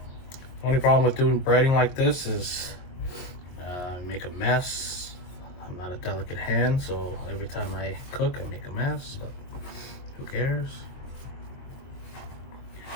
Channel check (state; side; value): late; right; 23 ms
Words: only problem with doing breading like this is make a mess. I'm not a delicate hand, so every time I cook I make a mess, but who cares?